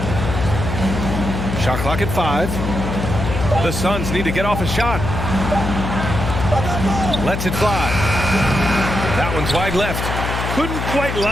Shot clock at 5. The Suns need to get off a shot. Lets it fly. That one's wide left. Couldn't quite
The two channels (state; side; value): noise; left; hum, 3 dB below the sound